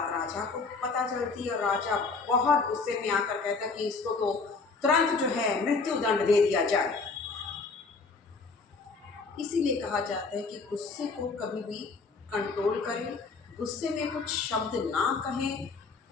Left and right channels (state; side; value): quieter; right; 4.3 dB